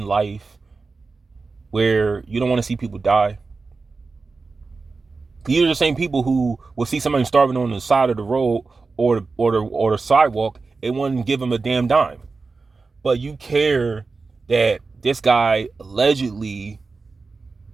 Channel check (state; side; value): quieter; left; 4.1 dB